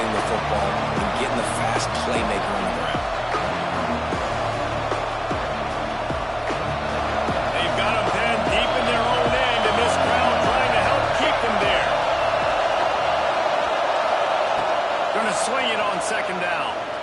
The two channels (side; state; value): both; identical; correlation 1.00